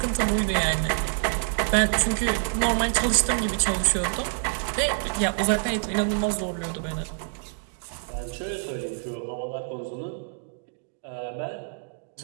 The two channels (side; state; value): left; silent; digital silence